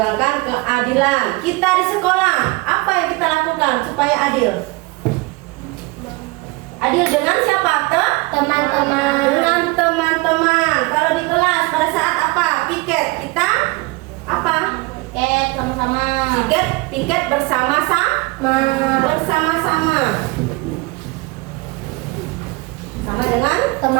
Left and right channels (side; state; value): left; quieter; 24.3 dB